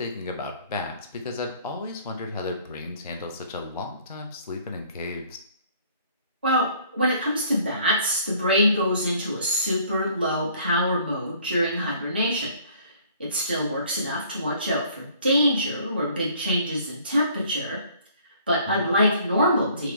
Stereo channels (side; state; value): both; inverted; correlation -0.57